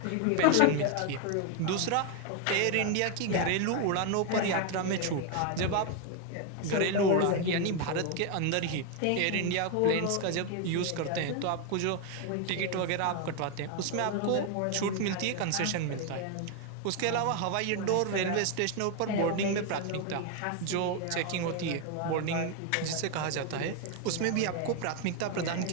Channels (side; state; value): both; different; correlation 0.01